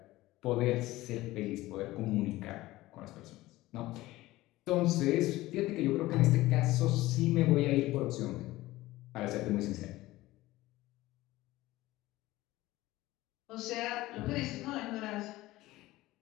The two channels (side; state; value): right; quieter; 17.8 dB